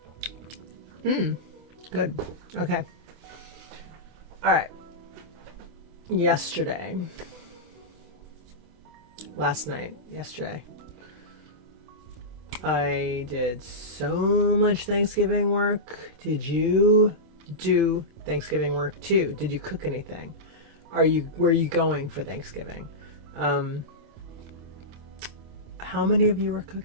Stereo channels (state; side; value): late; left; 26 ms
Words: Good. Okay. All right. Yesterday, I did so much Thanksgiving work. Did you do Thanksgiving work too? Did you cook anything? Where are you going for Thanksgiving? How many of you are